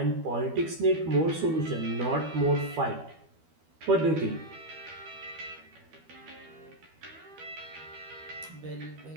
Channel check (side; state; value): left; late; 12 ms